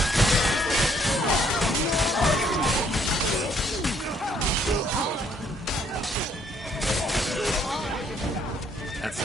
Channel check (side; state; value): both; normal; correlation 0.66